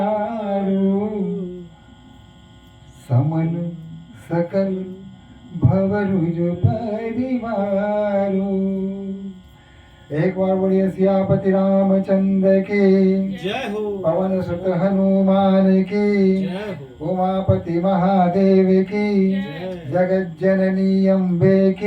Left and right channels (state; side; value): identical; both; correlation 1.00